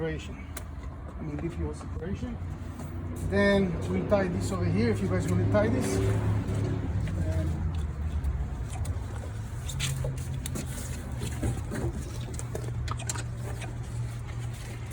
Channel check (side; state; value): both; identical; correlation 1.00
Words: I mean BPO separation. Then we'll tie this over here if you guys want to tie this. And